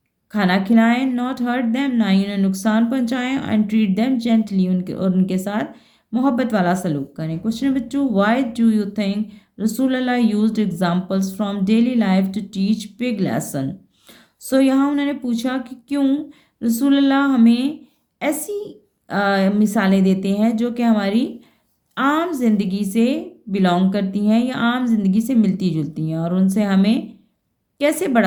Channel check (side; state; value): both; identical; correlation 1.00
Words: खाना खिलाएं। नॉट हर्ट दैम, ना ही उन्हें नुकसान पहुंचाएं। एंड ट्रीट दैम जेंटली, उनके साथ मोहब्बत वाला सलूक करें। Question number 2, why do you think Rasool Allah used examples from daily life to teach big lesson. So यहाँ उन्होंने पूछा कि क्यों रसूल अल्लाह हमें ऐसी मिसालें देते हैं जो कि हमारी आम जिंदगी से बिलोंग करती हैं या आम जिंदगी से मिलती जुलती हैं और उनसे हमें कैसे